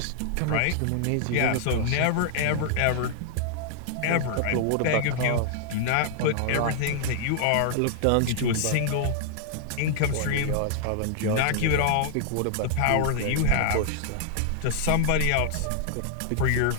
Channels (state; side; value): different; both; correlation -0.01